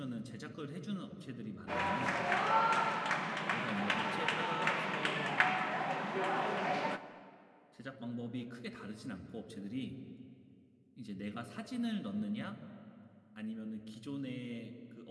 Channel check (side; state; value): both; identical; correlation 1.00